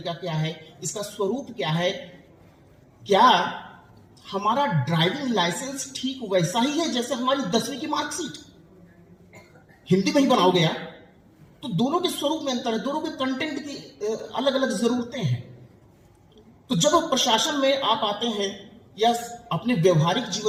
क्या है, इसका स्वरूप क्या है, क्या हमारा ड्राइविंग लाइसेंस ठीक वैसा ही है जैसे हमारी 10वीं की मार्कशीट, हिंदी में ही बनाओगे यार। तो दोनों के स्वरूप में अंतर है, दोनों के कंटेंट की अलग अलग जरूरतें हैं। तो जब प्रशासन में आप आते हैं या अपने व्यवहारिक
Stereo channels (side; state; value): both; identical; correlation 1.00